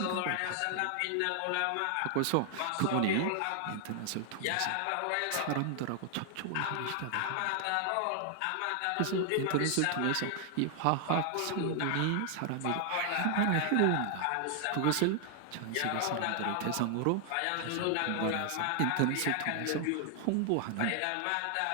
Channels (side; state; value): both; different; correlation 0.00